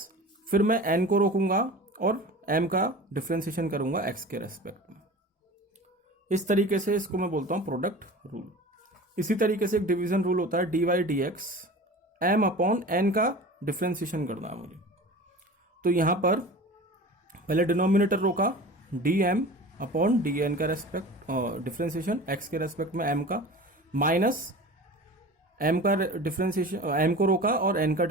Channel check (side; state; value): both; normal; correlation 0.37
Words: फिर मैं n को रोकूंगा और m का डिफरेंशिएशन करूंगा x के रेस्पेक्ट में। इस तरीके से इसको मैं बोलता हूं प्रोडक्ट रूल। इसी तरीके से एक डिवीजन रूल होता है dy dx, m upon n का डिफरेंशिएशन करना है मुझे। तो यहां पर पहले डिनोमिनेटर रोका, dm अपॉन डी एन का रेस्पेक्ट डिफरेंशिएशन x के रेस्पेक्ट में m का, माइनस m का डिफरेंशिएशन m को रोका और n का